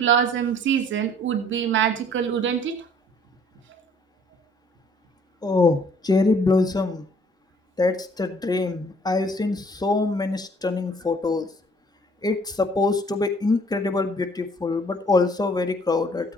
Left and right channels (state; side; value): normal; both; correlation 0.58